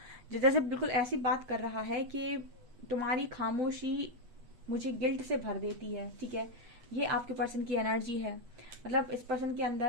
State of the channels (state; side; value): late; left; 8.2 ms